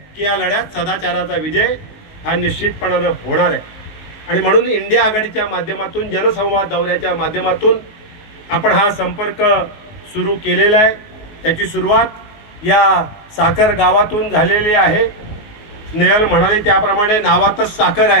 की या लढ्यात सदाचाराचा विजय हा निश्चितपणानं होणार आहे. आणि म्हणून इंडिया आघाडीच्या माध्यमातून, जनसंवाद दौऱ्याच्या माध्यमातून आपण हा संपर्क सुरू केलेला आहे. त्याची सुरुवात या साखर गावातून झालेली आहे. स्नेहल म्हणाली त्याप्रमाणे नावातच साखर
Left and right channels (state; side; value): late; right; 19 ms